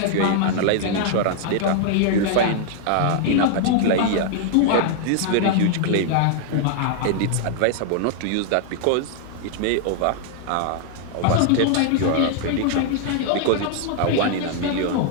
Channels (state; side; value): different; both; correlation 0.00